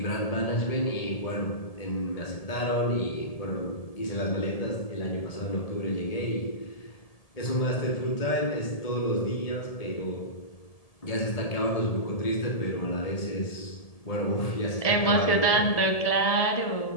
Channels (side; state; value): right; late; 1.7 ms